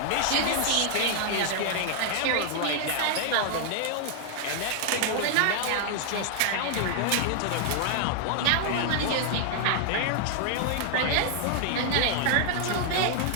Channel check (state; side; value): different; both; correlation 0.00